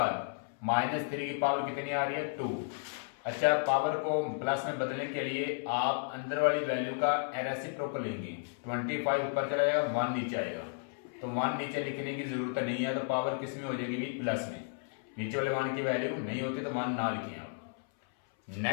-3 की पावर कितनी आ रही है 2। अच्छा, पावर को प्लस में बदलने के लिए आप अंदर वाली वैल्यू का रेसिप्रोकल लेंगे, 25 ऊपर चला जाएगा, 1 नीचे आएगा, तो 1 नीचे लिखने की जरूरत नहीं है, तो पावर किस में हो जाएगी भी प्लस में, नीचे वाले 1 की वैल्यू नहीं होती तो 1 ना लिखें आप।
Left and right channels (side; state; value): right; silent; 56 dB below the other